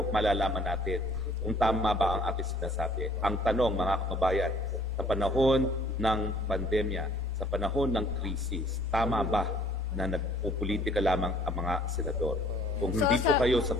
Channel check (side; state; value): both; normal; correlation 0.57